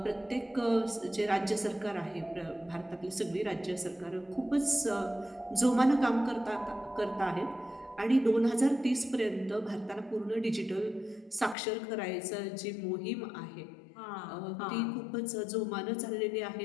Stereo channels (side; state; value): right; drops out; at 11.6 s